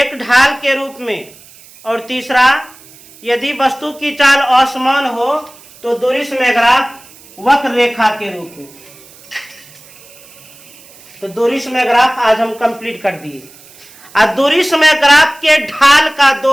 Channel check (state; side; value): noise; right; hiss, 23 dB below the sound